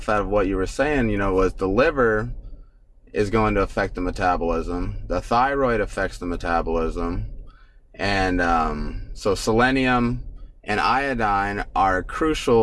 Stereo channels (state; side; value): identical; both; correlation 1.00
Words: out of what you were saying, was the liver is going to affect the metabolism. The thyroid affects the metabolism. And so selenium and iodine are